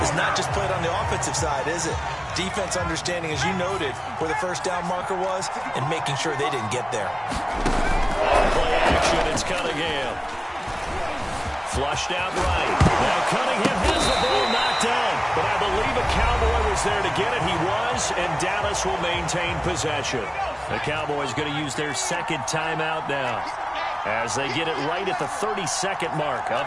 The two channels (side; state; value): both; identical; correlation 1.00